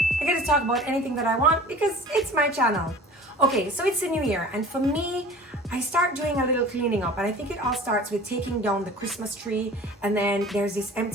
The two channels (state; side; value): normal; both; correlation 0.42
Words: I get to talk about anything that I want because it's my channel. Okay, so it's a new year, and for me, I start doing a little cleaning up, and I think it all starts with taking down the Christmas tree, and then there's this